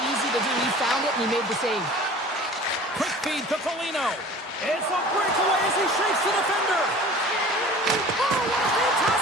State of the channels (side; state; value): both; normal; correlation 0.43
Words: easy to do. He found it and he made the save. Quick feed to Foligno. It's a breakaway as he shakes the defender. Oh, what a